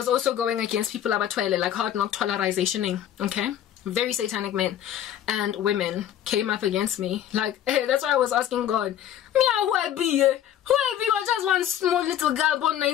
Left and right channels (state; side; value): quieter; right; 10.8 dB